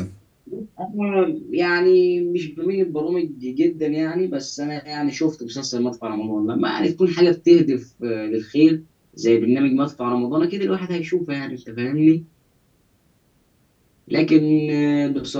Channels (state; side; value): identical; both; correlation 1.00